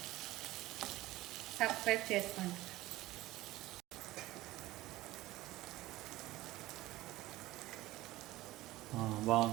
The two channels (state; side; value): quieter; left; 17.5 dB